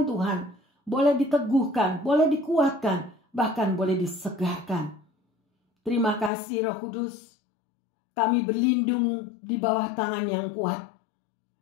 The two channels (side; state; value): right; drops out; at 6.3 s